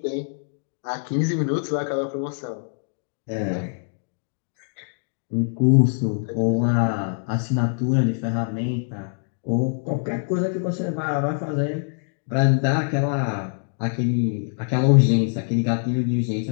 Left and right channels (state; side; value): silent; right; 63 dB below the other